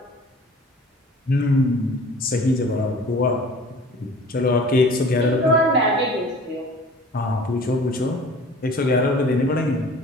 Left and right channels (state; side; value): normal; both; correlation 0.46